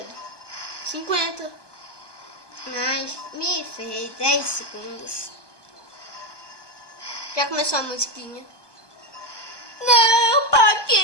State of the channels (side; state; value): right; late; 1.2 ms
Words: 50. Mas me fez 10 segundos. Já começou a musiquinha. Não,